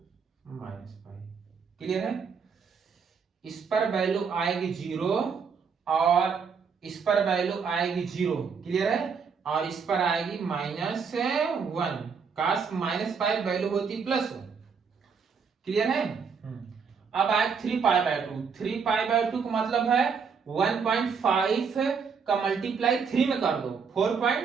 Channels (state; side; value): quieter; left; 5.9 dB